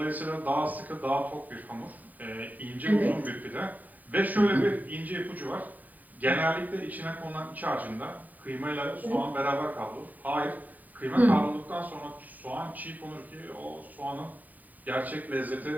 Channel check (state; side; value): late; left; 0.081 ms